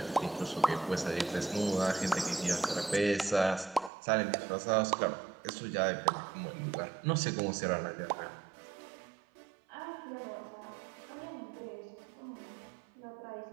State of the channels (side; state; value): left; drops out; at 3.9 s